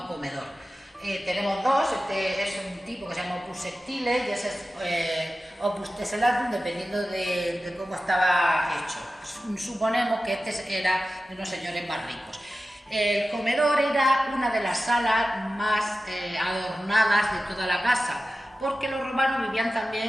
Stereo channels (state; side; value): normal; both; correlation 0.94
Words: comedor. Tenemos dos, este es un tipo que se llama opus sectile y ese es opus tessellatum, dependiendo de cómo estaba hecho. Suponemos que este era de unos señores más ricos. El comedor era una de las salas más adornadas de toda la casa, porque los romanos vivían